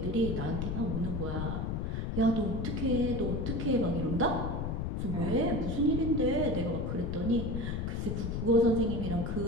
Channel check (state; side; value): noise; left; rumble, 2 dB below the sound